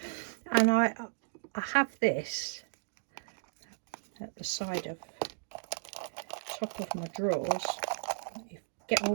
And I have this at the side of top of my drawers. You get all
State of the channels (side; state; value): left; silent; digital silence